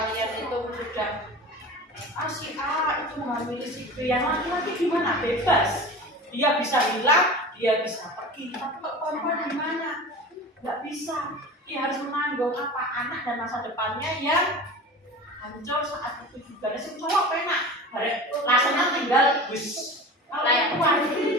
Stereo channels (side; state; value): both; normal; correlation 0.35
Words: itu sudah si A itu menghamili si B, yang laki-laki gimana? Bebas, dia bisa hilang, dia bisa pergi. Tapi kok perempuan gimana? Nggak bisa. dia harus menanggung apa anak dan masa depannya yang hancur saat itu juga. Sing cowok penak, rasanya tinggal bus kayak